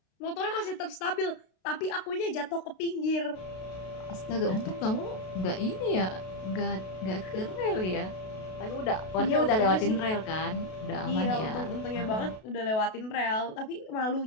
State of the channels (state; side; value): late; right; 32 ms